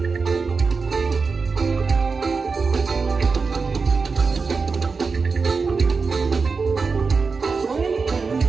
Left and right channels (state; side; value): quieter; left; 4.7 dB